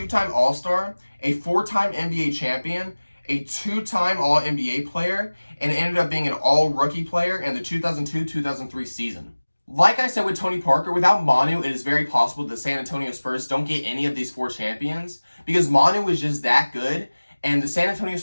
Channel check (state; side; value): inverted; both; correlation -1.00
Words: All-Star, a 4-time NBA champion, a 2-time All-NBA player, and ended up being an All-Rookie player in the 2002-2003 season. Like I said with Tony Parker, without Manu, it is very possible that the San Antonio Spurs don't get any of these 4 champions because Manu was just that good, and the San Antonio